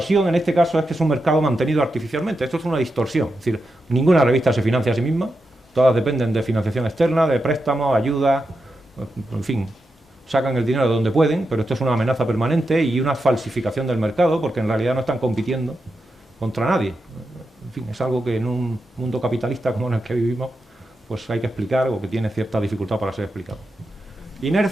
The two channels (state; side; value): normal; both; correlation 0.88